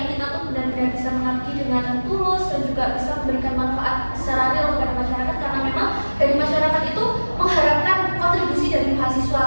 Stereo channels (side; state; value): both; inverted; correlation -1.00